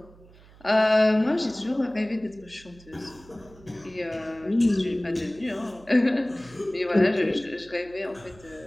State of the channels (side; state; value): right; noise; hum, 24 dB below the sound